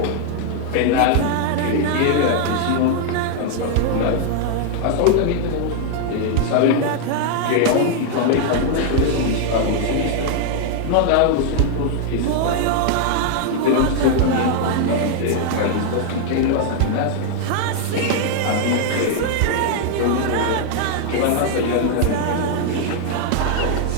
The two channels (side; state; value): both; different; correlation 0.00